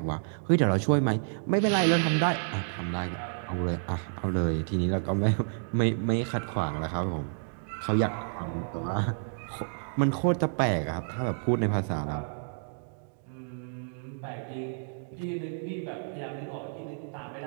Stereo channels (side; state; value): left; silent; digital silence